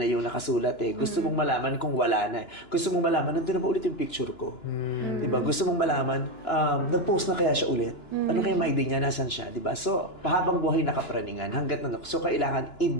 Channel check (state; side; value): late; right; 2.9 ms